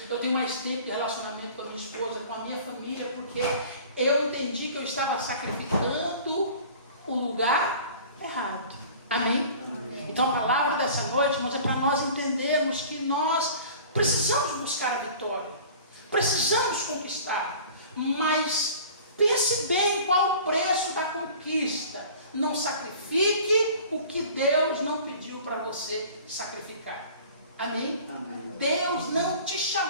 eu tenho mais tempo de relacionamento com a minha esposa, com a minha família, porque eu entendi que eu estava sacrificando o lugar errado. Amém? Então a palavra dessa noite, irmãos, é para nós entendermos que nós precisamos buscar a vitória, precisamos conquistar, mas pense bem qual o preço da conquista. Não sacrifique o que Deus não pediu para você sacrificar. Amém? Amém. Deus não te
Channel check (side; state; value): both; inverted; correlation -0.44